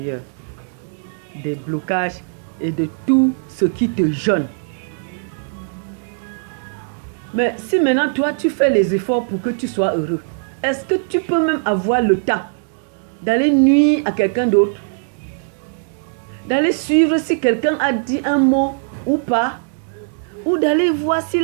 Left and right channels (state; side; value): silent; left; digital silence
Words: des blocages et de tout ce qui te gêne. Mais si maintenant toi tu fais les efforts pour que tu sois heureux, est-ce que tu peux même avoir le temps d'aller nuire à quelqu'un d'autre? D'aller suivre si quelqu'un a dit un mot ou pas? Ou d'aller voir